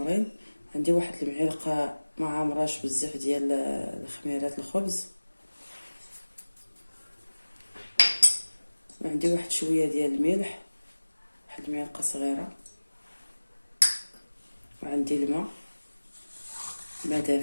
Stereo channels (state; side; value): inverted; both; correlation -1.00